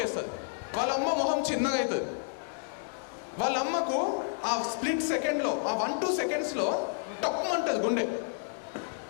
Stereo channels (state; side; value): silent; right; digital silence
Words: వాళ్ళ అమ్మ మొహం చిన్నగా అవుతుంది. వాళ్ళ అమ్మకు ఆ స్ప్లిట్ సెకండ్లో, ఆ 1-2 secondsలో టక్మంటుంది గుండె.